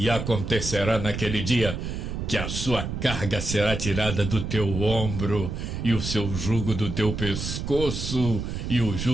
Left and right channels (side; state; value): right; noise; rumble, 4 dB below the sound